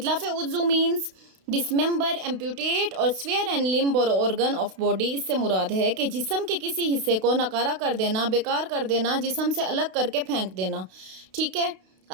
उज़ू मीन्स डिसमेंबर, एम्प्यूटेट और स्वेयर एंड लिम्ब और ऑर्गन ऑफ बॉडी। इससे मुराद है कि जिस्म के किसी हिस्से को नकारा कर देना, बेकार कर देना, जिस्म से अलग करके फेंक देना। ठीक है,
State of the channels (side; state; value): left; late; 32 ms